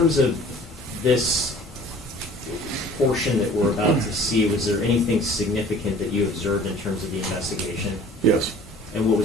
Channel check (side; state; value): both; normal; correlation 0.49